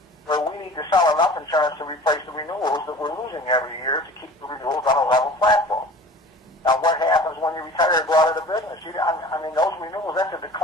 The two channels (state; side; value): normal; both; correlation 0.42